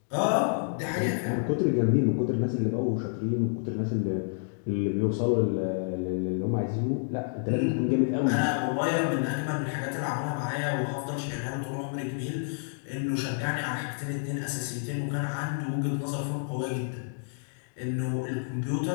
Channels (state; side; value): silent; right; digital silence